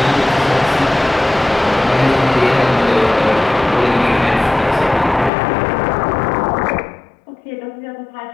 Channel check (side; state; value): right; drops out; at 5.3 s